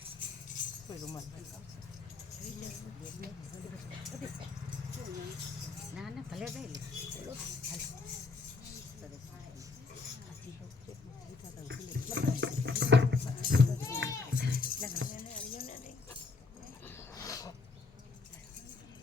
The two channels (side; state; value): right; quieter; 4.2 dB